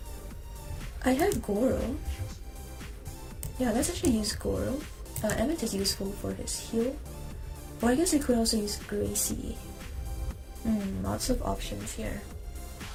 I have Goro. Yeah, let's actually use Goro. Emmett is useful for his heal. Or I guess I could also use Gracie. Lots of options here.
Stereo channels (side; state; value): both; identical; correlation 1.00